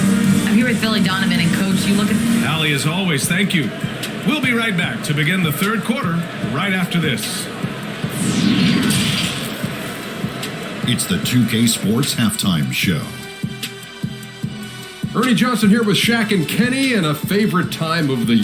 I'm here with Billy Donovan, and Coach, you look at... Allie, as always, thank you. We'll be right back to begin the third quarter right after this. It's the 2K Sports Halftime Show. Ernie Johnson here with Shaq and Kenny, and a favorite time of the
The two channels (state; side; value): identical; both; correlation 1.00